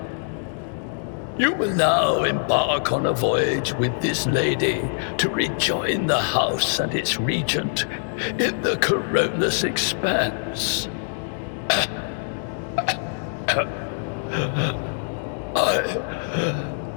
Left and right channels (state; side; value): silent; right; digital silence